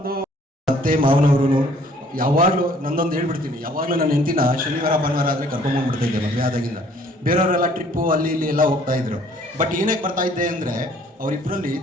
ಅತ್ತೆ ಮಾವನವರು ಯಾವಾಗಲೂ ನಂದೊಂದು ಹೇಳ್ಬಿಡ್ತೀನಿ, ಯಾವಾಗಲೂ ನನ್ನ ಹೆಂಡತಿನ ಶನಿವಾರ ಭಾನುವಾರ ಆದರೆ ಕರ್ಕೊಂಡ್ಬಂದ್ಬಿಡ್ತಾ ಇದ್ದೆ ಮದುವೆ ಆದಾಗಿಂದ. ಬೇರೆಯವರೆಲ್ಲ ಟ್ರಿಪ್ಪು ಅಲ್ಲಿ ಇಲ್ಲಿ ಎಲ್ಲ ಹೋಗ್ತಾ ಇದ್ರು. ಬಟ್ ಏನಕ್ಕೆ ಬರ್ತಾ ಇದ್ದೆ ಅಂದರೆ ಅವರಿಬ್ಬರಲ್ಲಿ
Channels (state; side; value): normal; both; correlation 0.58